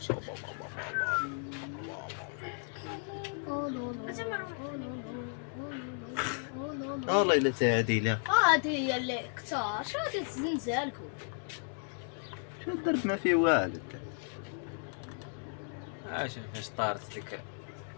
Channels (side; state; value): right; silent; 55 dB below the other